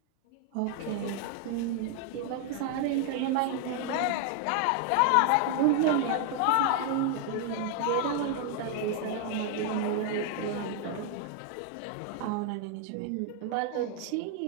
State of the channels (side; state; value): both; different; correlation 0.00